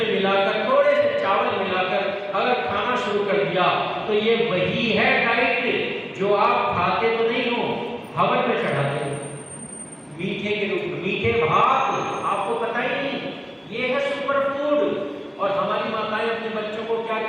मिलाकर थोड़े से चावल मिलाकर अगर खाना शुरू कर दिया तो ये वही है डाइट जो आप खाते तो नहीं हो, हवन में चढ़ाते हो मीठे के रूप में। मीठे भात आपको पता ही नहीं, ये है सुपर फूड। और हमारी माताएं अपने बच्चों को क्या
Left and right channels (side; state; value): both; identical; correlation 1.00